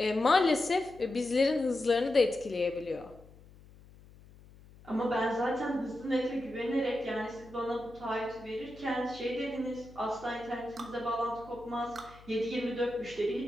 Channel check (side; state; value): left; noise; hum, 22 dB below the sound